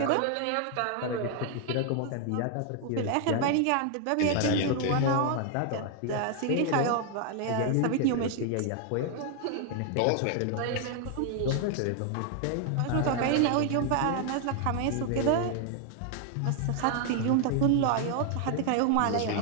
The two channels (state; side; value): different; both; correlation 0.00